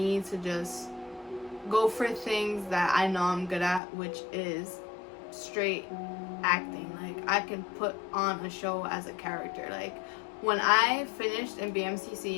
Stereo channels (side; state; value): right; drops out; at 3.8 s